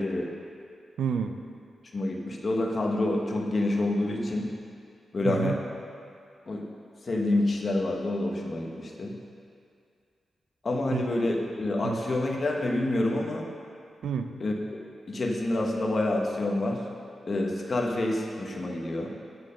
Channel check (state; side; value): normal; both; correlation 0.90